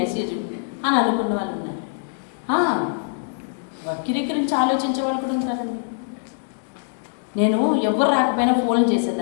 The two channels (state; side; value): silent; right; digital silence